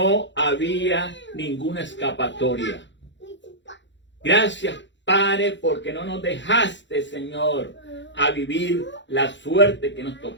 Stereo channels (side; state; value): right; late; 0.53 ms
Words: había ninguna escapatoria. Gracias, Padre, porque no nos dejaste, Señor, a vivir la suerte que nos